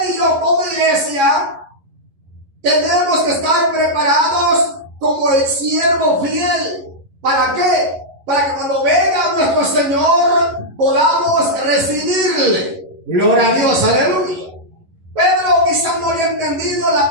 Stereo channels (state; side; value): late; left; 11 ms